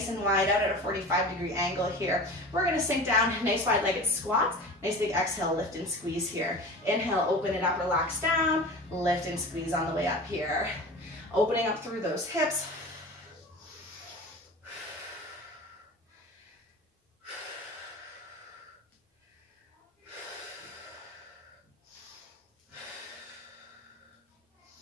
and wide out at a 45-degree angle here. We're gonna sink down, nice wide-legged squats. Nice big exhale, lift and squeeze here. Inhale, open it up, relax down. Lift and squeeze on the way up here. Opening up through those hips.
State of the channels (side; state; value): both; normal; correlation 0.35